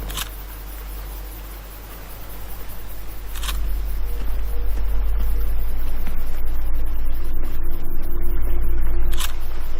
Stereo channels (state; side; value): identical; both; correlation 1.00